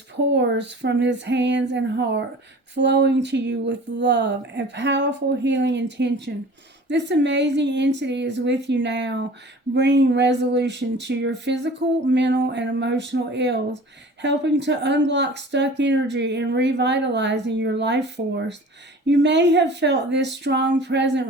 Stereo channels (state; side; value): normal; both; correlation 0.43